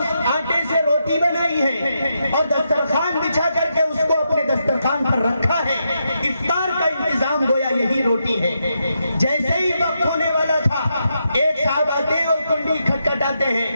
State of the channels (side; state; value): both; inverted; correlation -0.83